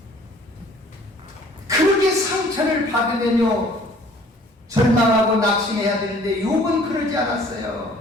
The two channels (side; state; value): both; normal; correlation 0.54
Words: 그렇게 상처를 받으면요 절망하고 낙심해야 되는데 욥은 그러지 않았어요.